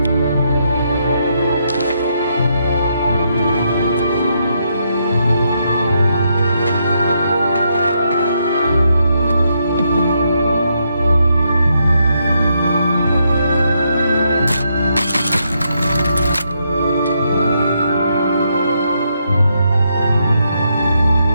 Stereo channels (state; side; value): inverted; both; correlation -0.78